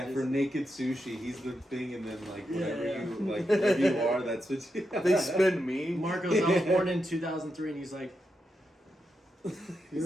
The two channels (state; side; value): normal; both; correlation 0.85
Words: Just- for naked sushi, he's the thing, and then like whatever Yeah. you like, whatever you are, that's what you. They spin me. Marcos, I was born in 2003, and he's like,